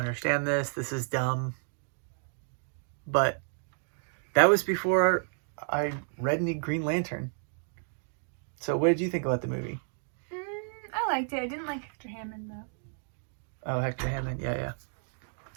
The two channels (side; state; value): left; silent; digital silence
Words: this. This is dumb. But that was before I read any Green Lantern. So what did you think about the movie? I liked it. I didn't like Hector Hammond, though. Oh, Hector Hammond. Yeah.